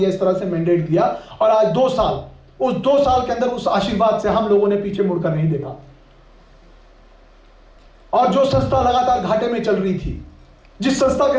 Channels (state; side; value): identical; both; correlation 1.00